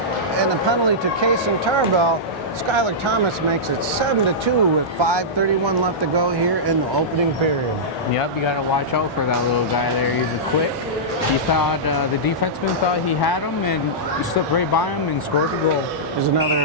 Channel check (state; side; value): normal; both; correlation -0.14